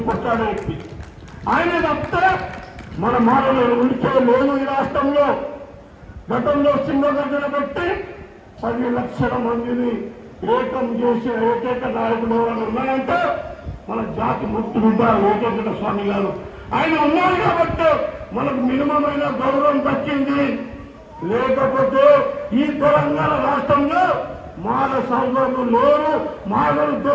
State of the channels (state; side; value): identical; both; correlation 1.00